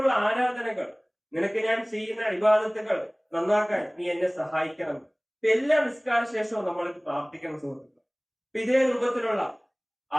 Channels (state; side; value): identical; both; correlation 1.00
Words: ആരാധനകൾ, നിനക്ക് ഞാൻ ചെയ്യുന്ന ഇബാദത്തുകൾ നന്നാക്കാൻ നീ എന്നെ സഹായിക്കണം. എല്ലാ നിസ്കാര ശേഷവും നമ്മൾ പ്രാർത്ഥിക്കണം സുഹൃത്തുക്കൾ. ഇതേ രൂപത്തിലുള്ള